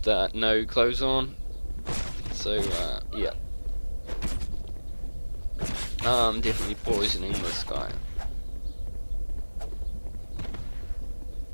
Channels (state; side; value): inverted; both; correlation -1.00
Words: no clothes on. So, yeah. I'm definitely poisoning this guy.